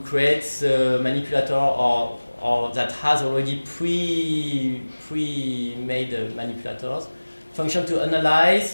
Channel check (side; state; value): both; inverted; correlation -1.00